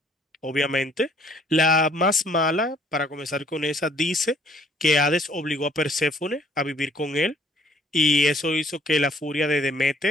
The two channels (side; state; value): both; normal; correlation 0.61